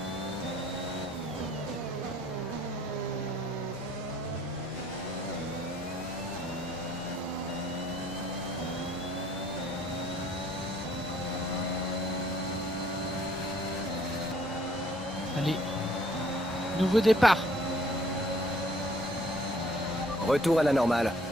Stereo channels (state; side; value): normal; both; correlation 0.60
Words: Allez. Nouveau départ. Retour à la normale.